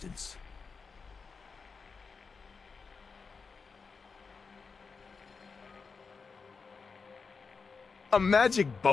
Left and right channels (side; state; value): right; quieter; 5.0 dB